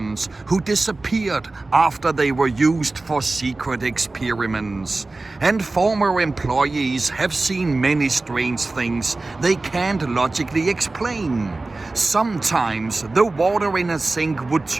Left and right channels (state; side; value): quieter; left; 3.3 dB